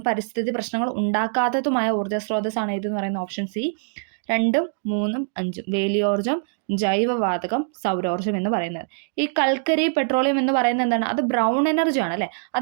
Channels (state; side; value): silent; left; digital silence